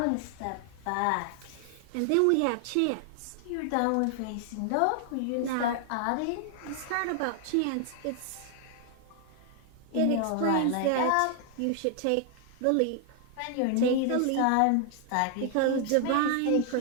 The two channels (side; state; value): both; different; correlation 0.00